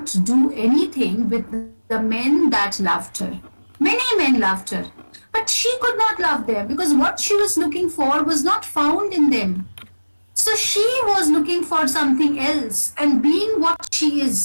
do anything with the men that loved her. Many men loved her, but she could not love them because what she was looking for was not found in them. So she was looking for something else, and being what she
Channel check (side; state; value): both; inverted; correlation -1.00